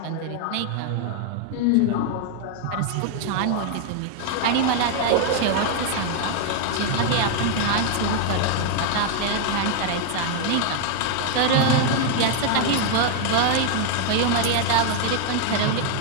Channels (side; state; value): both; different; correlation 0.00